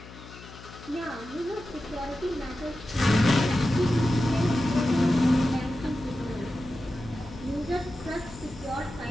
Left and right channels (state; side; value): noise; left; hum, 17 dB below the sound